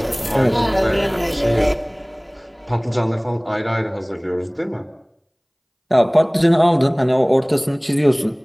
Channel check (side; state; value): both; identical; correlation 1.00